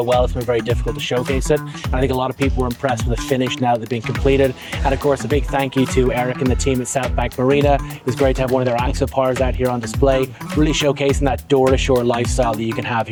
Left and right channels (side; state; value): both; identical; correlation 1.00